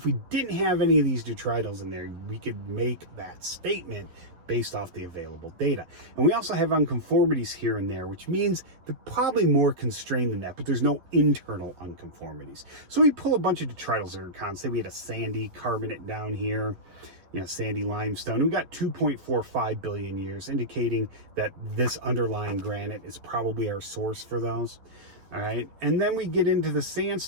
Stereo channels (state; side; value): late; left; 11 ms